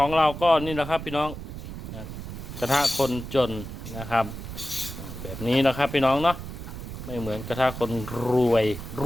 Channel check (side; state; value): right; noise; rumble, 9 dB below the sound